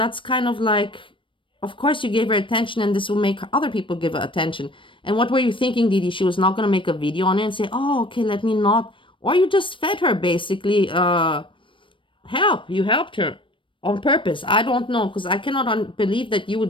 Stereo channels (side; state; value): right; late; 0.25 ms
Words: kind of like, of course you gave her attention and this will make other people give her attention. And what were you thinking, Deedee? She was not going to make a video on it and say, oh, okay, let me not. Or you just fed her basically help. You helped her on purpose. I don't know, because I cannot believe that you